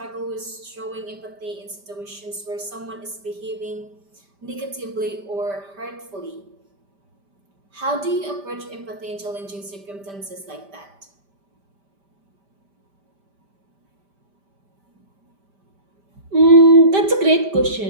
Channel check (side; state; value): left; late; 5.1 ms